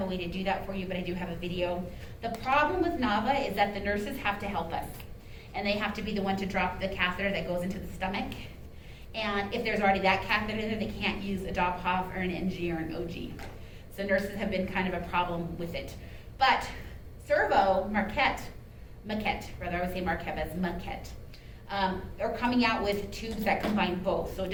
a way to do that for you, but I do have a video. The problem with NAVA is that the nurses have to help us. And they have to be the one to drop the catheter that goes into the stomach. And if there's already that catheter there, they can't use a Dopphoff or an NG or an OG. So nurses have been kind of a problem with it. But Servo, Marquette, rather I would say Marquette, but it's Marquette. Are coming out with tubes that combine both. So it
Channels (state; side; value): identical; both; correlation 1.00